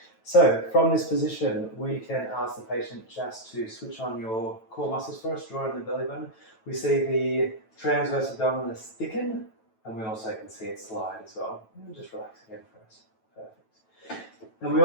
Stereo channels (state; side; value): late; right; 9.1 ms